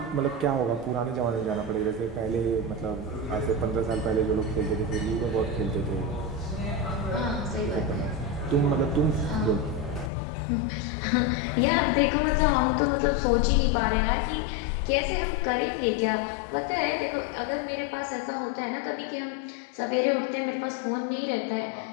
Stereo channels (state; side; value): drops out; right; at 10.1 s